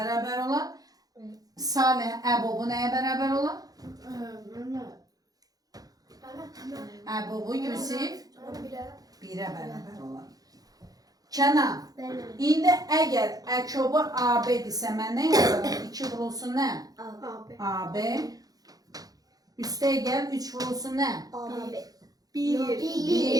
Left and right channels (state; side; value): late; left; 0.18 ms